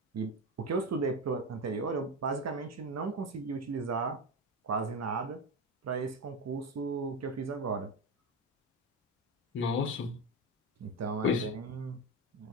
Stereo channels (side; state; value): both; normal; correlation 0.18